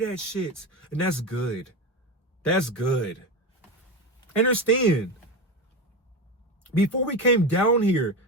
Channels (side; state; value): both; normal; correlation 0.20